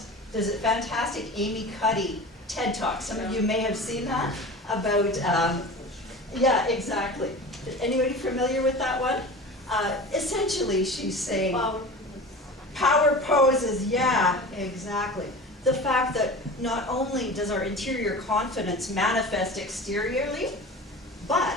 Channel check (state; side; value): normal; both; correlation 0.35